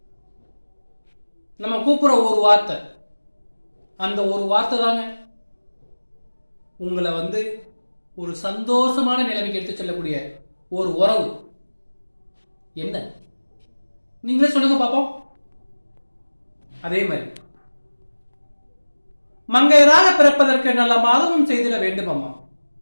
நம்ம கூப்பிடுற ஒரு வார்த்தை, அந்த ஒரு வார்த்தை தாங்க உங்களை ஒரு சந்தோஷமான நிலைமைக்கு எடுத்து செல்லக்கூடிய ஒரு உறவு. என்ன நீங்களே சொல்லுங்க பாப்போம். அதே மாதிரி மங்கையராக பிறப்பதற்கு நல்ல மாதமும் செய்திட வேண்டும் அம்மா.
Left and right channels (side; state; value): both; inverted; correlation -1.00